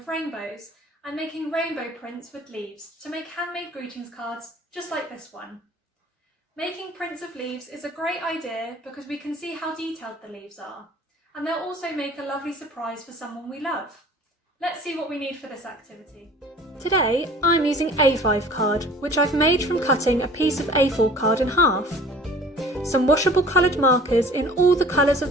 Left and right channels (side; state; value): both; normal; correlation 0.47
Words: rainbows and making rainbow prints with leaves to make handmade greetings cards just like this one. Making prints of leaves is a great idea because we can see how detailed the leaves are, and they'll also make a lovely surprise for someone we love. Let's see what we need for this activity. Today I'm using A5 card, which I've made from cutting a piece of A4 card in half. Some washable coloured markers in all the colours